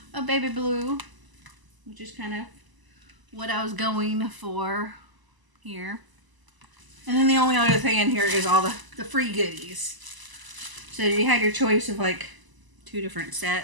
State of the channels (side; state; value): left; late; 1.0 ms